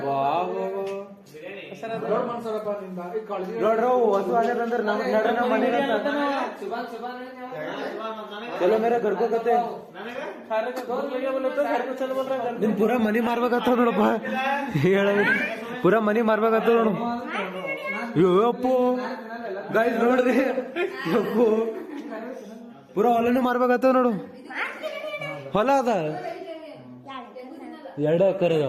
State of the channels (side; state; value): both; identical; correlation 1.00